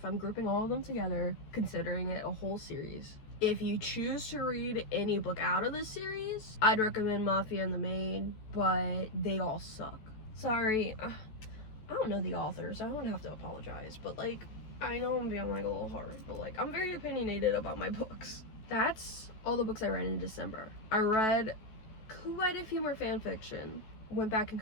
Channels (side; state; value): right; late; 14 ms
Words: I'm grouping all of them together, considering it a whole series. If you choose to read any book out of this series, I'd recommend Mafia and the Maid, but they all suck. Sorry, I don't know the authors, I don't have to apologize, but like, I know I'm being like a little hard, but like, I'm very opinionated about my books. That's all the books I read in December. I read quite a few more fan fiction. Went back and